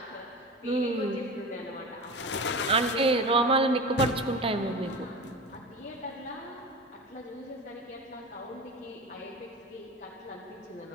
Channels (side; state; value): both; normal; correlation 0.30